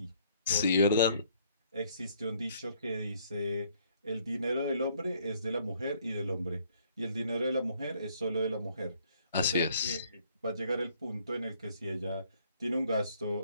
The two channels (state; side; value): inverted; both; correlation -0.64